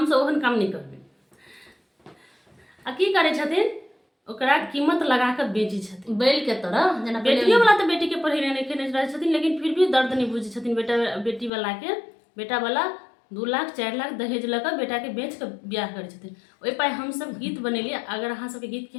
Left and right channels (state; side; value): drops out; right; at 11.5 s